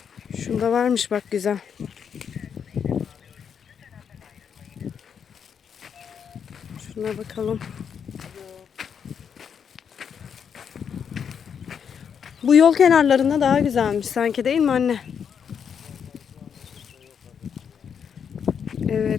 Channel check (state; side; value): quieter; right; 7.3 dB